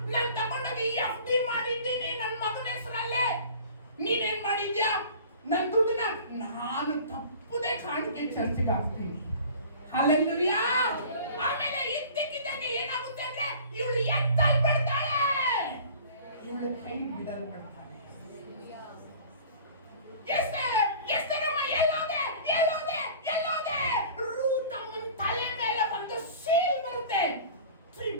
ನಾನು ತಗೊಂಡೋಗಿ FD ಮಾಡಿದ್ದೀನಿ ನನ್ನ ಮಗನ ಹೆಸರಲ್ಲೇ. ನೀನೇನ್ ಮಾಡಿದ್ಯಾ? ನನ್ನ ದುಡ್ಡನ್ನ ನಾನು ತಪ್ಪದೆ ಕಾಣಿಕೆ ಚರ್ಚಿಗೆ ಹಾಕ್ತೀನಿ. ಹಲ್ಲೆಲೂಯಾ. ಆಮೇಲೆ ಇದ್ದಕ್ಕಿದ್ದಂಗೆ ಏನಾಗುತ್ತೆ ಅಂದ್ರೆ ಇವಳು ಎತ್ತಲ್ ಬಿಡ್ತಾಳೆ, ಇವಳು ಕೈ ಬಿಡಲ್ಪಡ್ತಾಳೆ. ಎಸ್ತೇರಮ್ಮ ಎಲ್ಲೋದೆ? ರೂತಮ್ಮನ ತಲೆ ಮೇಲೆ ಒಂದು ಸೀಲ್ ಬರುತ್ತೆ,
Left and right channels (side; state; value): both; inverted; correlation -0.44